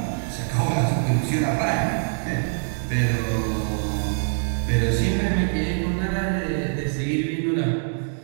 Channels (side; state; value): left; silent; digital silence